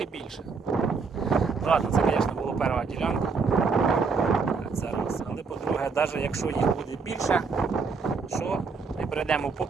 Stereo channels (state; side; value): quieter; left; 4.9 dB